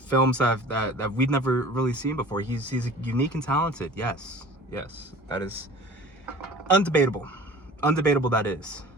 that we've never really seen before. He's unique and talented. Yes, that is undebatable. Undebatable that is.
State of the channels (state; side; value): normal; both; correlation 0.43